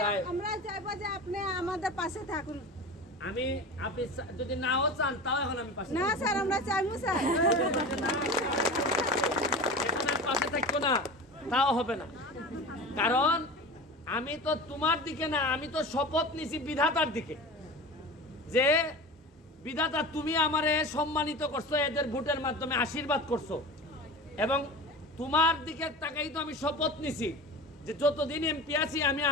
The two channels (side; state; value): both; normal; correlation 0.32